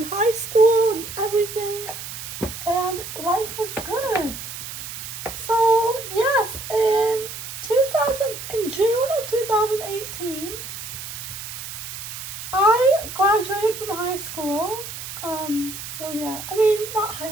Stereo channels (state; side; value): noise; right; hiss, 9 dB below the sound